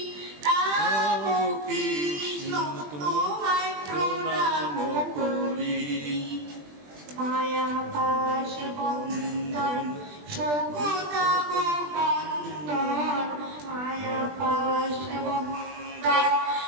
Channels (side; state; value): left; late; 20 ms